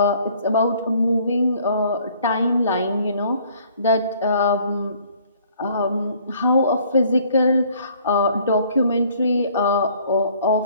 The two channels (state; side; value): inverted; both; correlation -0.59